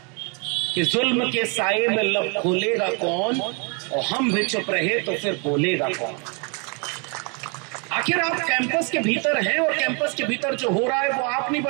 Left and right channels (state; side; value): quieter; left; 34.4 dB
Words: कि जुल्म के साए में लब खोलेगा कौन, और हम भी चुप रहे तो फिर बोलेगा कौन। आखिर आप कैंपस के भीतर हैं और कैंपस के भीतर जो हो रहा है वो आप नहीं